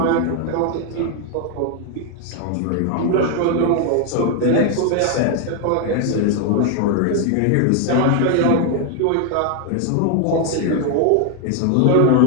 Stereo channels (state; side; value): different; both; correlation 0.00